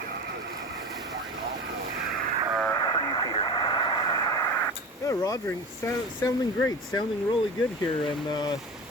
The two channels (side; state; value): both; normal; correlation 0.31